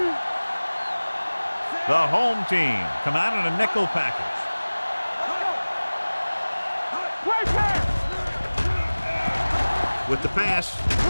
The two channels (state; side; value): inverted; both; correlation -1.00